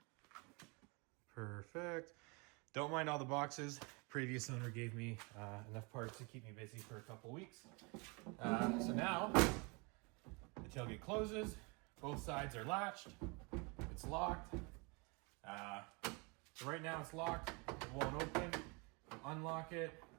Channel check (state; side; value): quieter; left; 30.3 dB